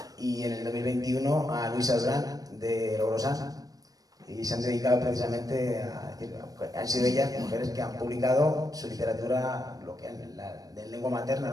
y en el 2021 a Luisa Durán de Logrosán. Y se han dedicado precisamente a decir, han sido ellas mujeres que han publicado su literatura, lo que de lengua materna,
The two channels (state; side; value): late; left; 0.18 ms